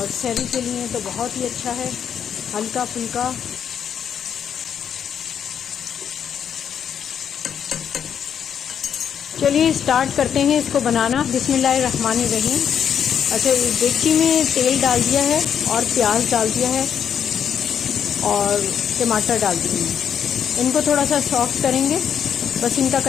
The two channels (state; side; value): quieter; right; 8.3 dB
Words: सहरी के लिए तो बहुत ही अच्छा है, हल्का फुल्का। चलिए स्टार्ट करते हैं इसको बनाना। बिस्मिल्लाहिर्रहमानिर्रहीम। अच्छा, एक डेगची में तेल डाल दिया है और प्याज डाल दिया है और टमाटर डाल दिए हैं। इनको थोड़ा सा सॉफ्ट करेंगे, बस इनका